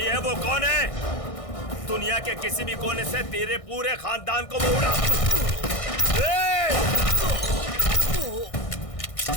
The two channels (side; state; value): right; late; 1.6 ms